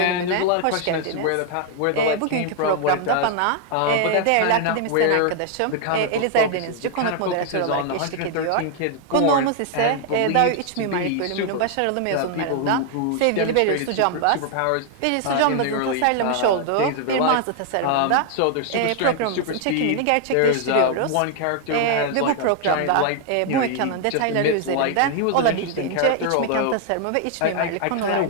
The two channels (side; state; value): both; different; correlation 0.00